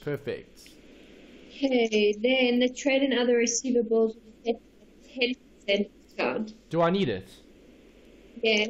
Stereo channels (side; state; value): both; identical; correlation 1.00